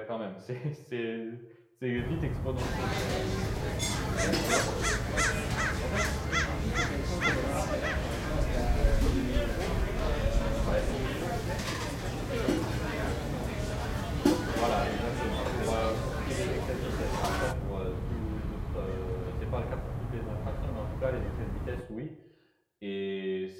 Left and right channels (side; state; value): both; identical; correlation 1.00